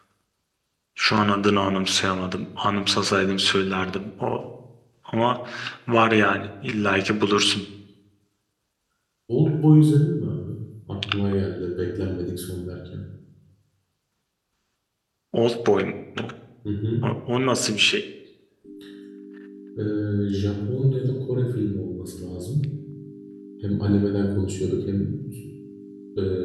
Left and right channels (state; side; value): identical; both; correlation 1.00